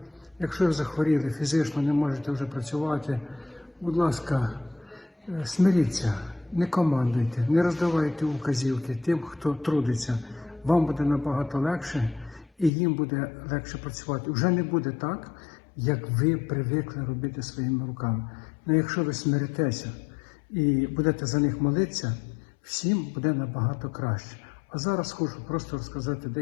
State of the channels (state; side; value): drops out; right; at 12.7 s